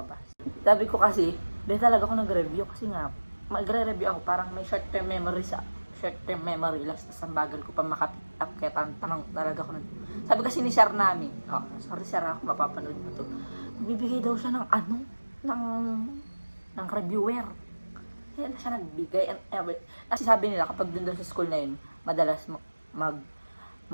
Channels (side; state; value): both; inverted; correlation -1.00